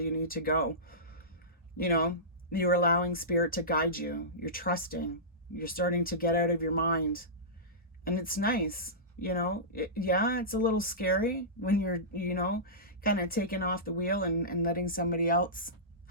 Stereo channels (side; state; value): both; normal; correlation -0.18